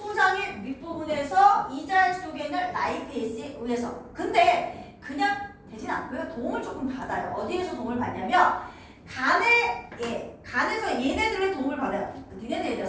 윗부분에서 이자액 속에 있는 라이페이스에 의해서. 근데 그냥 되진 않고요. 도움을 조금 받아요. 어디에서 도움을 받냐면 간에서 얘네들의 도움을 받아요. 니네들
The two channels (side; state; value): both; identical; correlation 1.00